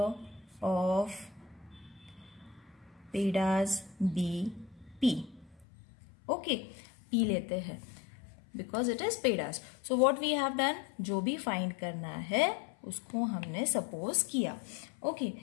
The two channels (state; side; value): drops out; right; at 5.7 s